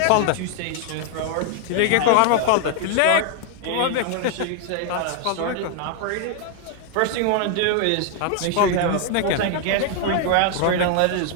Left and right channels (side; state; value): both; different; correlation 0.00